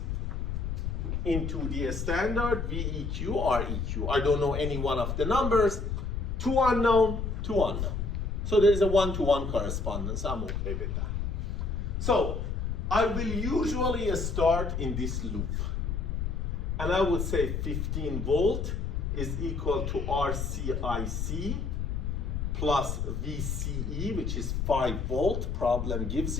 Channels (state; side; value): noise; left; rumble, 2 dB below the sound